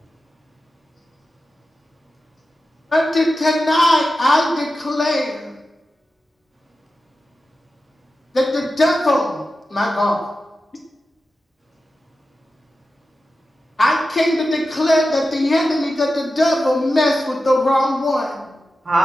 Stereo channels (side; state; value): both; normal; correlation 0.92